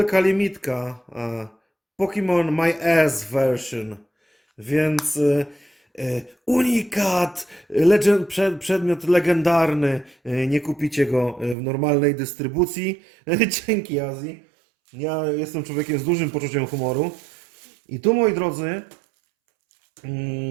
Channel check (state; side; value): drops out; left; at 11.6 s